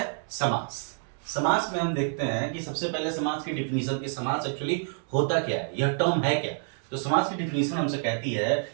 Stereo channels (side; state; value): left; silent; 59 dB below the other